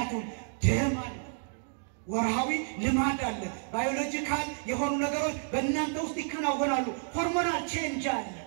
ደም አለ፣ ወርሃዊ ልማድ አለ፣ ባዮሎጂካል የሆኑ ነገሮች በእናንተ ውስጥ ይከናወናሉ። ሆርሞናል ቼንጅ አለ።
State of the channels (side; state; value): left; silent; 57 dB below the other